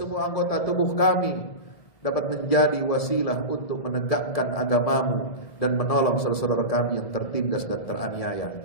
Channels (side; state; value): right; late; 1.7 ms